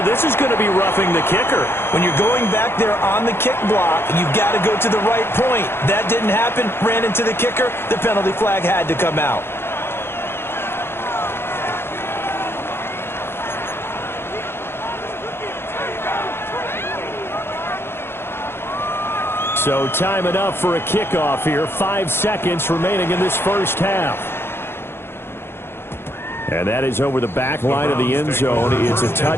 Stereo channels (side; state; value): right; late; 0.11 ms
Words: This is going to be roughing the kicker. When you're going back there on the kick block, you've got to go to the right point. That didn't happen. Ran into the kicker. The penalty flag had to come out. So time enough for a kickoff here. 5 seconds remaining in this first half. And that is over the back line of the end zone. It's a